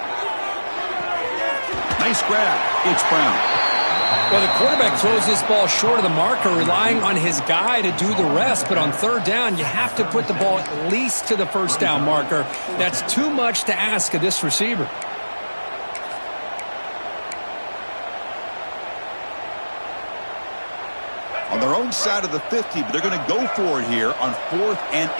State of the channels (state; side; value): inverted; both; correlation -1.00